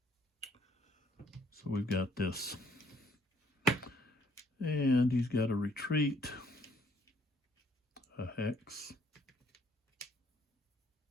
So we've got this. And he's got a retreat. A hex.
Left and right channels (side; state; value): both; normal; correlation 0.65